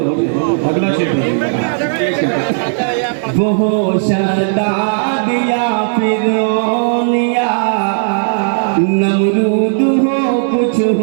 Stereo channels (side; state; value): left; silent; digital silence